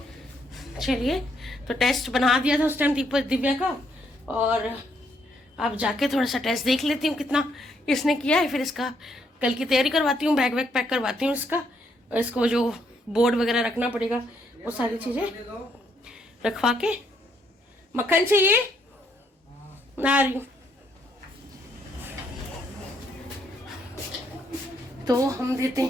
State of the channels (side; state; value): both; normal; correlation 0.72